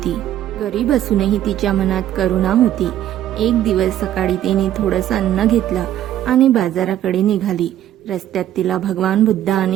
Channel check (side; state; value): left; quieter; 12.0 dB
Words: गरीब असूनही तिच्या मनात करुणा होती. एक दिवस सकाळी तिने थोडंसं अन्न घेतलं आणि बाजाराकडे निघाली. रस्त्यात तिला भगवान बुद्ध